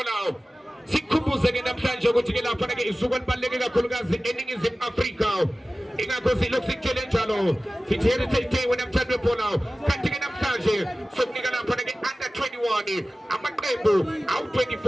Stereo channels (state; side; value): normal; both; correlation 0.97